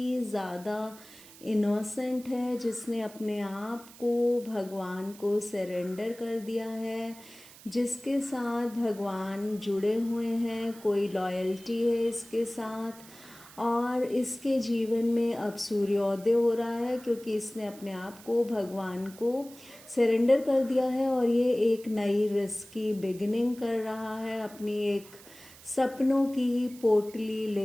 ज़्यादा इनोसेंट है, जिसने अपने आप को भगवान को सरेंडर कर दिया है, जिसके साथ भगवान जुड़े हुए हैं, कोई लॉयल्टी है इसके साथ। और इसके जीवन में अब सूर्योदय हो रहा है, क्योंकि इसने अपने आप को भगवान को सरेंडर कर दिया है और ये एक नई रिस्क की बिगिनिंग कर रहा है। अपनी एक सपनों की पोटली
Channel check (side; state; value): right; noise; hiss, 20 dB below the sound